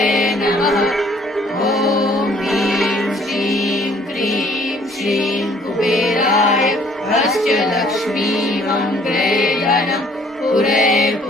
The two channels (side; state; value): both; normal; correlation 0.59